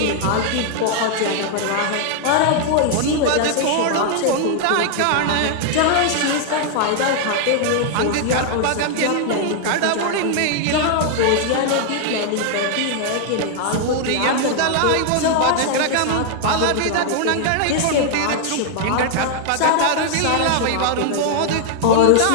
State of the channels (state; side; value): different; both; correlation 0.00